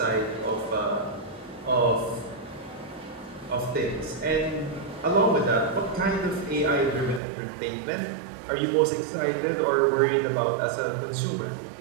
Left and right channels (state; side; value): drops out; left; at 7.2 s